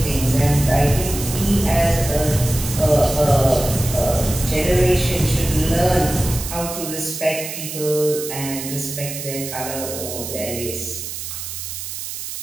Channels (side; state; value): right; noise; hiss, 7 dB below the sound